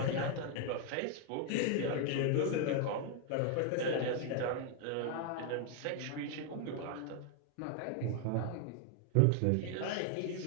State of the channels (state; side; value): different; both; correlation 0.00